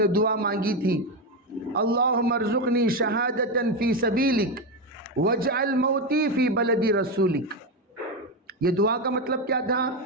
دعا مانگی تھی، اللہم ارزقنی شہادتا فی سبیلک واجعل موتی فی بلد رسولک. یہ دعا کا مطلب کیا تھا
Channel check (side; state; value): both; normal; correlation 0.12